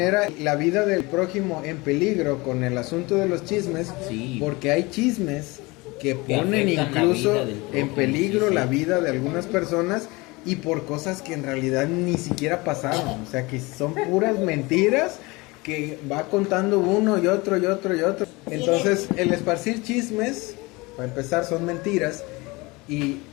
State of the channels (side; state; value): right; quieter; 24.1 dB